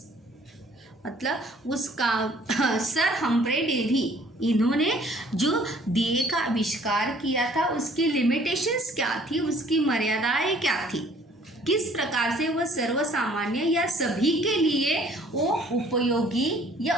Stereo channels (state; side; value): normal; both; correlation 0.57